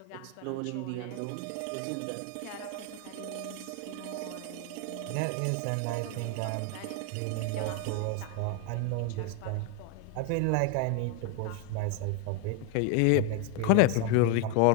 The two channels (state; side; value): different; both; correlation 0.01